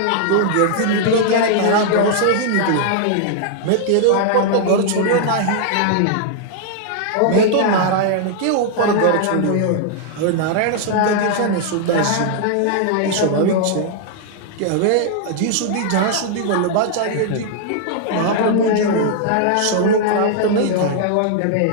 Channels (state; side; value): different; both; correlation -0.01